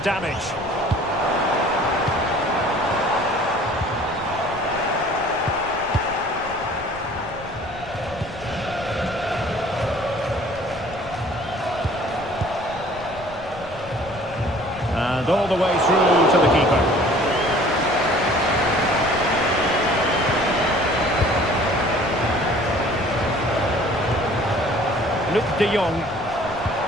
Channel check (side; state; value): left; noise; rumble, 21 dB below the sound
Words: damage. And all the way through to the keeper. Luc de Jong.